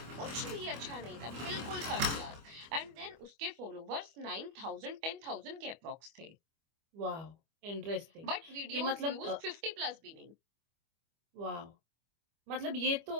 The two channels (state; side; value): late; left; 25 ms